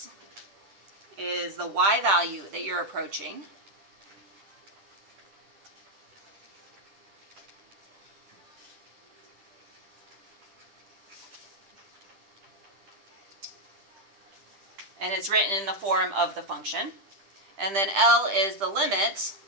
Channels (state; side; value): late; left; 10 ms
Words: is the y value that you're approaching. and it's written in the form of the function. And then L is the limit,